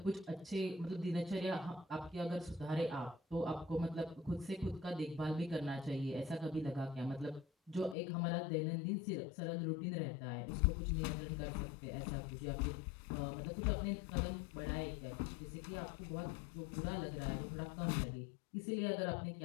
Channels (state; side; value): drops out; right; at 8.0 s